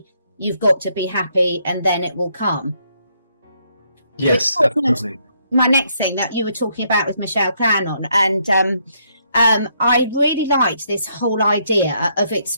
You've got to be happy and then it will come. Yes, absolutely. My next thing that you were talking about with Michelle Cannon, and I really liked this whole idea of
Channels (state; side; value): inverted; both; correlation -0.72